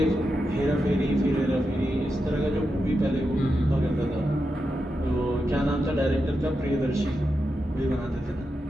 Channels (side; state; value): both; normal; correlation 0.87